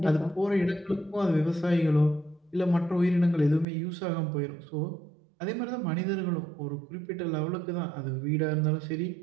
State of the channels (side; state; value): left; drops out; at 3.7 s